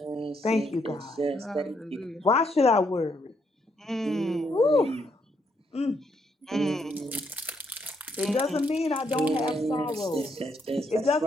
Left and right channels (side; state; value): both; normal; correlation 0.75